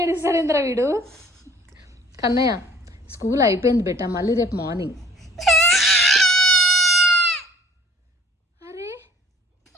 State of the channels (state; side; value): normal; both; correlation 0.55